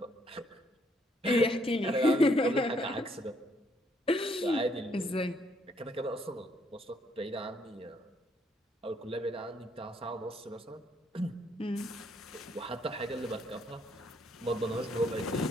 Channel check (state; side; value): normal; both; correlation 0.70